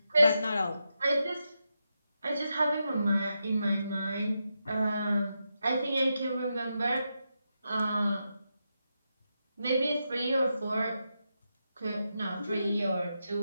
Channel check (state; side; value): inverted; both; correlation -0.86